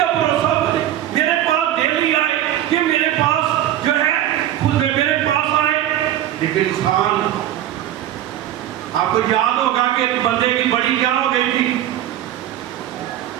بھروسہ بنے، میرے پاس ڈیلی آئے، کہ میرے پاس جو ہے خود میرے پاس آئے۔ لیکن انسان، آپ کو یاد ہوگا کہ ایک بندے کی بڑی کیا ہو گئی تھی؟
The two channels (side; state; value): left; quieter; 12.2 dB